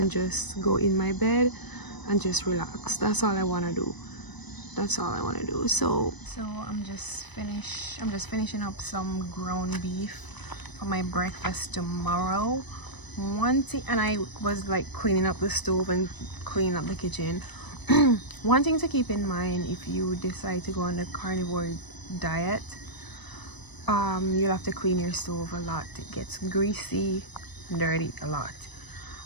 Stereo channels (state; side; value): late; right; 1.0 ms